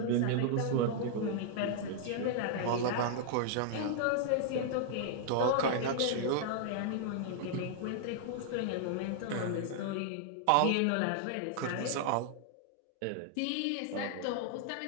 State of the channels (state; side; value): different; both; correlation -0.01